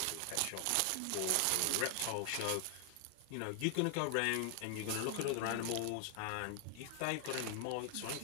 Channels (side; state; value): both; different; correlation 0.00